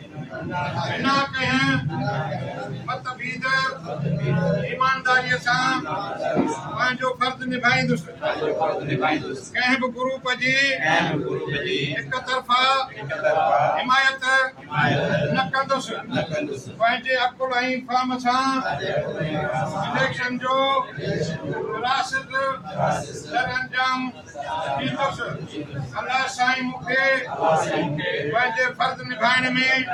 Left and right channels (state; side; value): identical; both; correlation 1.00